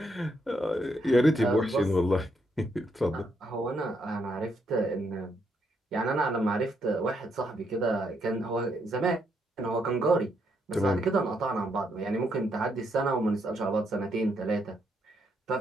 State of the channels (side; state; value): both; normal; correlation 0.76